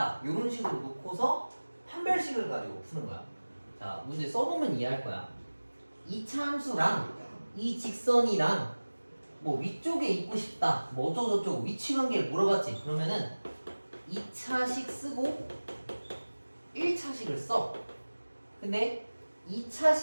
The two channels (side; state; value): both; inverted; correlation -1.00